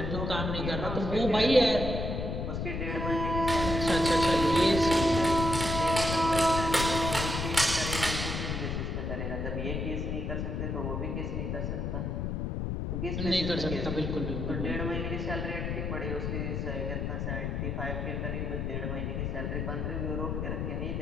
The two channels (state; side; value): noise; left; rumble, 2 dB below the sound